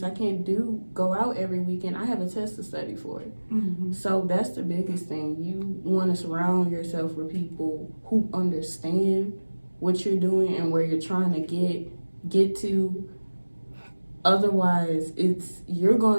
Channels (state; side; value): inverted; both; correlation -1.00